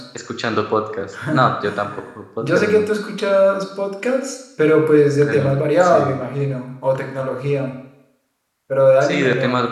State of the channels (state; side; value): identical; both; correlation 1.00